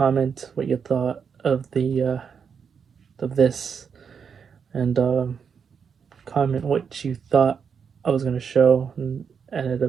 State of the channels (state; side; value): quieter; left; 6.6 dB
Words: what you thought of the of this, and comment what you thought I was gonna show and ended